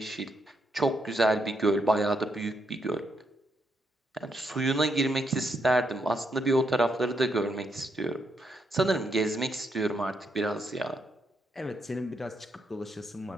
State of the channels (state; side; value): normal; both; correlation 0.78